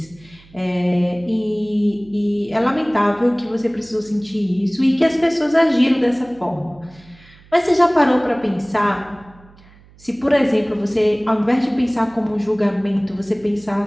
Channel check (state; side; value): noise; right; hum, 26 dB below the sound